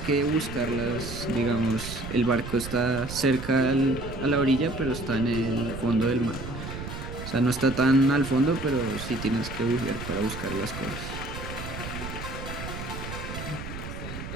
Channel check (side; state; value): right; noise; rumble, 8 dB below the sound